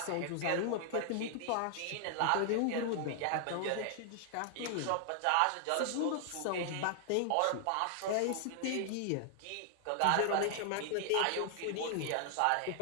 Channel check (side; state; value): both; different; correlation 0.00